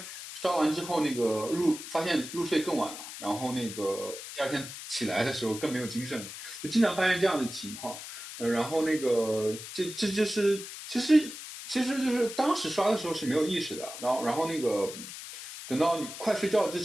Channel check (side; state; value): left; noise; hiss, 11 dB below the sound